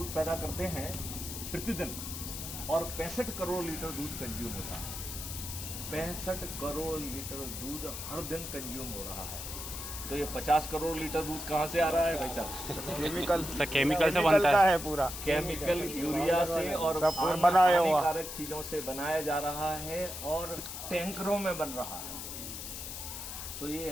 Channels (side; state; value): left; noise; hiss, 8 dB below the sound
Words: पैदा करते हैं प्रतिदिन और 65 करोड़ लीटर दूध कंज्यूम होता है। 65 करोड़ लीटर दूध हर दिन कंज्यूम हो रहा है। तो ये 50 करोड़ लीटर दूध कहाँ से आ रहा है भाई साहब? केमिकल से बनता है पूरा। केमिकल, यूरिया से और हानिकारक चीजों से बनाया जा रहा है और टैंकरों में बन रहा है। तो